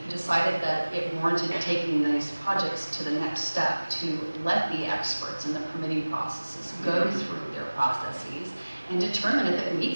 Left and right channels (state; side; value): inverted; both; correlation -1.00